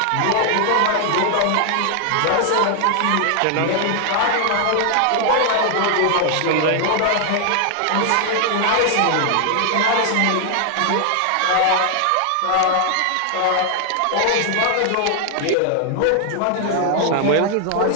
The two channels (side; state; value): both; different; correlation 0.00